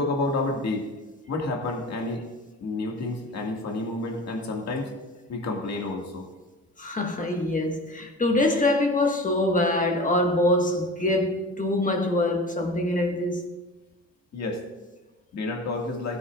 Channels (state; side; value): normal; both; correlation 0.36